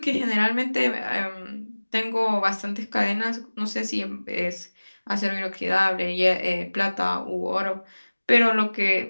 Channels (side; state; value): both; inverted; correlation -1.00